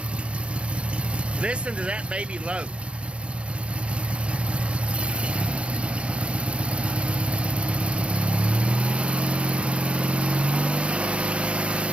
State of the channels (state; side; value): late; left; 0.058 ms